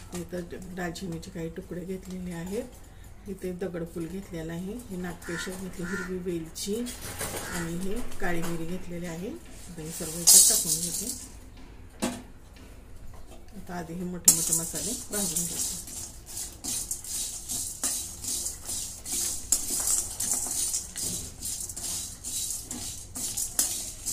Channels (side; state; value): both; identical; correlation 1.00